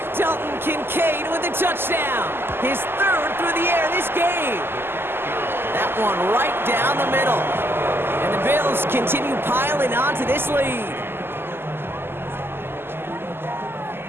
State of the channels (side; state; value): left; late; 0.11 ms